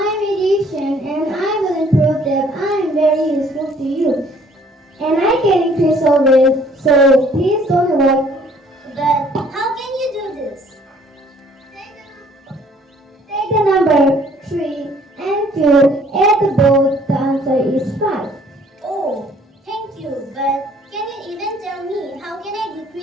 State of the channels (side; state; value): both; normal; correlation 0.59